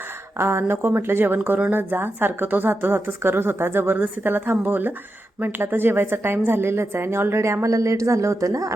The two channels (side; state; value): both; normal; correlation 0.88